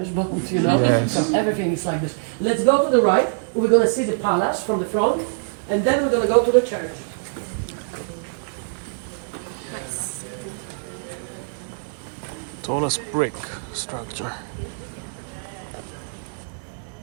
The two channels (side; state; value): left; silent; digital silence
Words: bond, you know? Yes. So everything is like this. Let's go to the right. We're going to see the palace from the front, and then we're going to go to the church. Nice. Tallest brick structure.